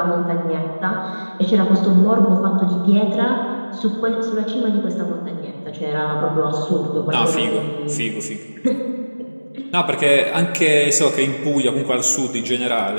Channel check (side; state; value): both; inverted; correlation -1.00